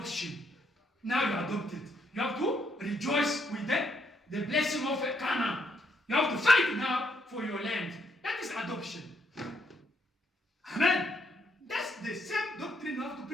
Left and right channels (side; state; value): both; normal; correlation 0.74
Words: Now you are adopted. You have to rejoice with the blessing of Canaan. You have to fight now for your land. That is adoption. Amen. That's the same doctrine you have to